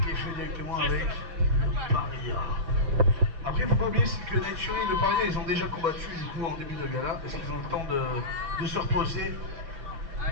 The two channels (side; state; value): left; late; 6.0 ms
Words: est fait directement avec le paria. Après, il ne faut pas oublier que Night Fury et le paria, ils ont déjà combattu du coup en début de gala. Est-ce qu'ils ont le temps de se reposer? Je